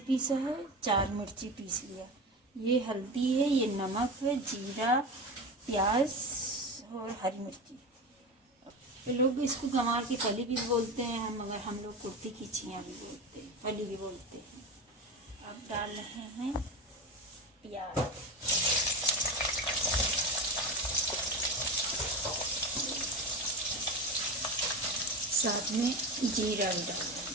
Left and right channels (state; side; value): normal; both; correlation 0.24